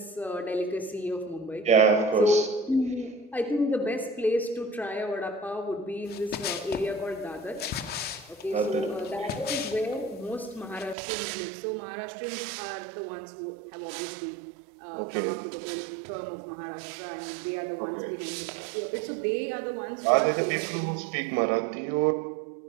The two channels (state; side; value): drops out; left; at 11.0 s